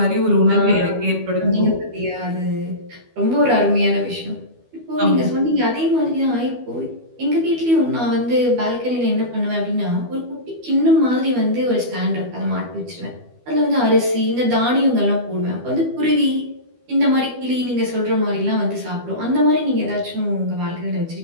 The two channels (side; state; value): left; late; 12 ms